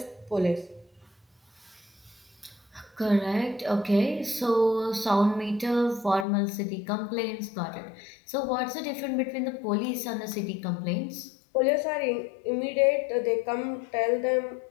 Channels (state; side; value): drops out; right; at 6.2 s